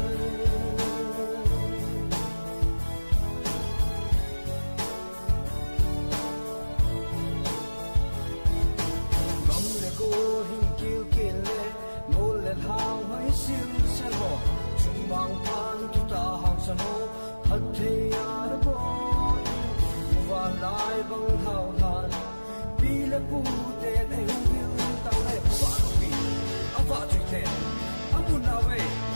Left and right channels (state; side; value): inverted; both; correlation -1.00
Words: hang hai sil se ho chung mang pan tu ta hang san ho hat the ya bo wa lai bang hao han pi le pu te ne hu ta le pa no pi a pa tu te a mu na we